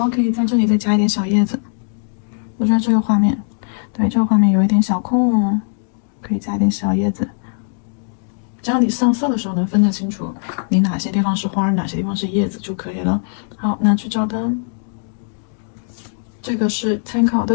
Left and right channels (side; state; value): right; silent; digital silence